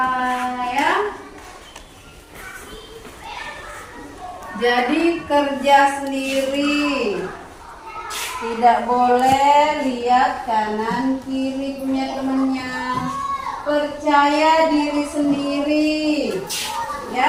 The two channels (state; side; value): identical; both; correlation 1.00